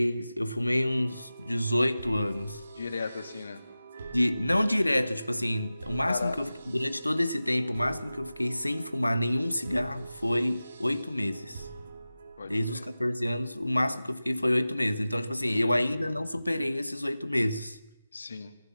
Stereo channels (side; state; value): both; inverted; correlation -0.96